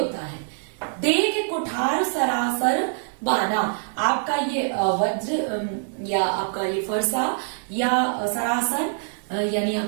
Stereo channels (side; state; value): left; silent; 62 dB below the other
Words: है। देख कुठार सरासर बाना, आपका ये वज्र या आपका ये फरसा या सरासर यानी